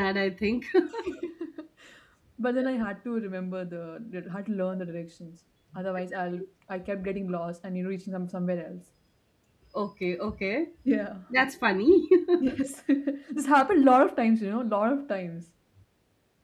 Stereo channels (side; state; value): both; identical; correlation 1.00